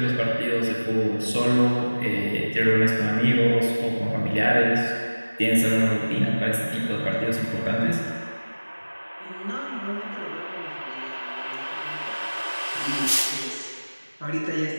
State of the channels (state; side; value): inverted; both; correlation -1.00